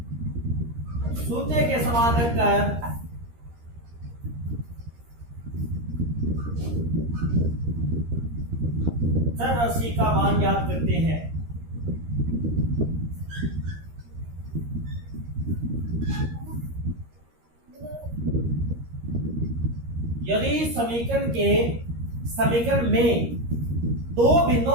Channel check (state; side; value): late; left; 13 ms